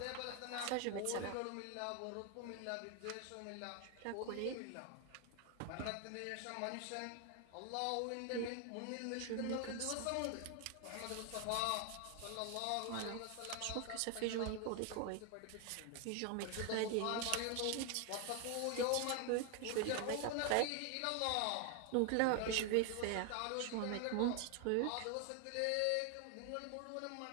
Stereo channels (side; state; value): both; different; correlation 0.01